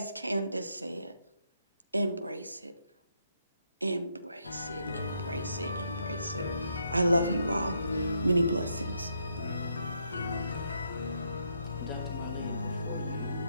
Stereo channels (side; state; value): both; inverted; correlation -0.76